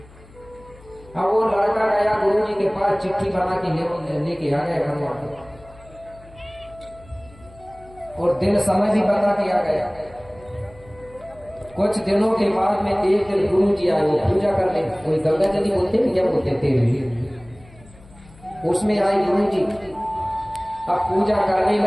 अब वो लड़का गया गुरु जी के पास, चिट्ठी बना के लेके आ गया बनवा के, और दिन समय भी बता के आ गया। कुछ दिनों के बाद में एक दिन गुरु जी आए, वो पूजा करने, कोई गंगा जली बोलते हैं क्या बोलते थे, उसमें आए गुरु जी। अब पूजा करने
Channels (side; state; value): left; noise; hum, 23 dB below the sound